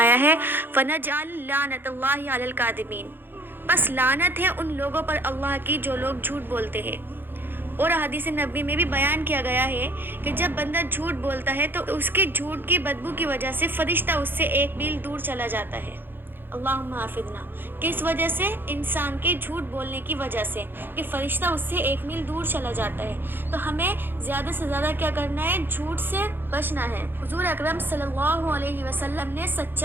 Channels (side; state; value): left; late; 0.099 ms